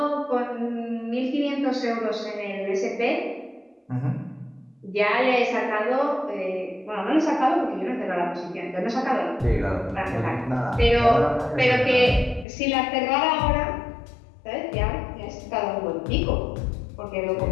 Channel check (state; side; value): drops out; right; at 12.5 s